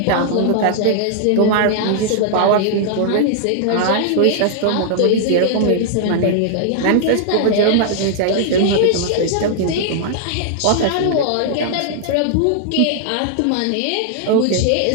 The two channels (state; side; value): different; both; correlation -0.01